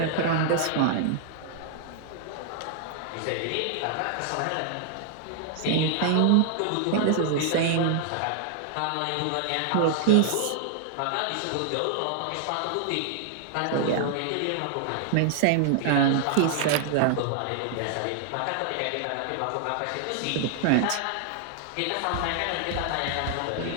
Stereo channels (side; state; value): both; different; correlation 0.00